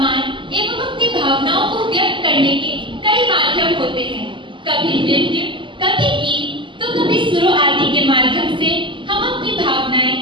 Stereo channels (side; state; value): left; late; 0.24 ms